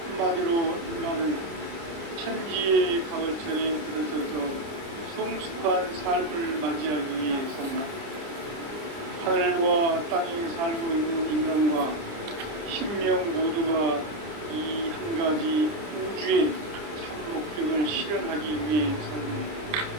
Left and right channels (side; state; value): left; late; 29 ms